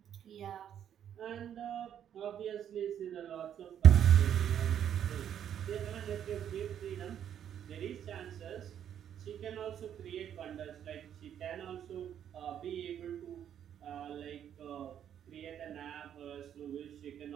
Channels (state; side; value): quieter; left; 9.6 dB